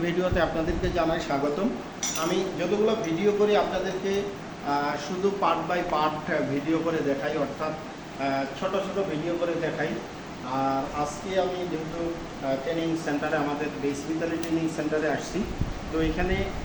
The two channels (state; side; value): identical; both; correlation 1.00